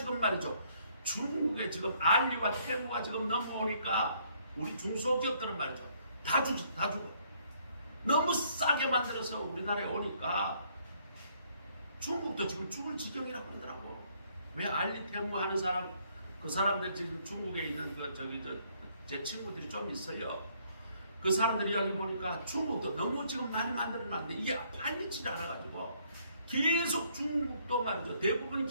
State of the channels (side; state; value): both; inverted; correlation -0.66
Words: 말이죠. 중국에 지금 알리와 테무가 지금 넘어오니까 우리 중소기업들은 말이죠. 다 죽어. 너무 싸게 만들어서 우리나라에 오니까 중국도 지금 죽을 지경이라고 그러더라고. 왜 알리 테무 하는 사람, 그 사람들 지금 중국에 있는 제 친구들이 좀 있어요. 그 사람들이 여기 보니까 중국도 너무 지금 많이 만들어놨는데 이게 팔리지 않아가지고 계속 중국도 말이죠. 대부분